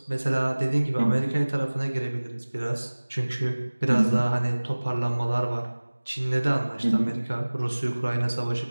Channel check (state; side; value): inverted; both; correlation -1.00